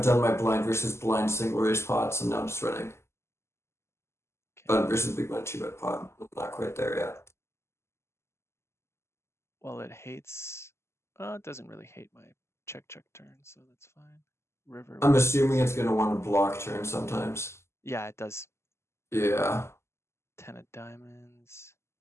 done my blind versus blind single raise pots, and now I'm just running button versus big blind 2-bet pot. I'm not quite there yet. Well, it hates. It doesn't really hate my check turn, so that's fine. River. I'm What assuming is? it's gonna want to block turn sometimes. Yeah, it does. Yeah. 10 of diamonds.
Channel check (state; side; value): late; right; 0.13 ms